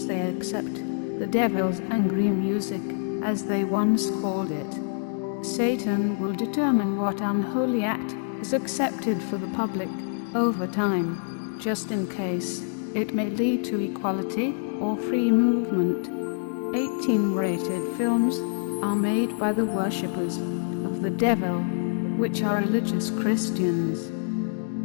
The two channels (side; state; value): right; silent; 61 dB below the other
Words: they accept the devil's angry music, as they once called it. Satan will determine what unholy act is accepted for the public over time, just in case it may lead to equality or free movement. 18-rated films are made by the worshippers of the devil, which are religious Christians.